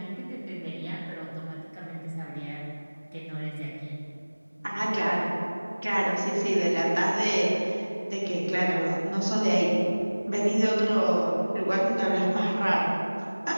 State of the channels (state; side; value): inverted; both; correlation -1.00